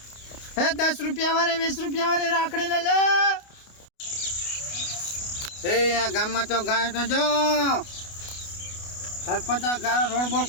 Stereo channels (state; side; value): late; right; 29 ms